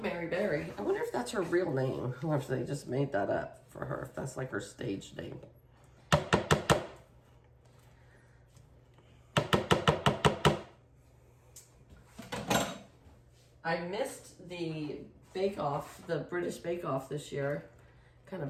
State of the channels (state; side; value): identical; both; correlation 1.00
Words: Mary Berry. I wonder if that's her real name, or if they just made that up for her, if that's like her stage name. I missed the Bake Off, the British Bake Off this year. Kind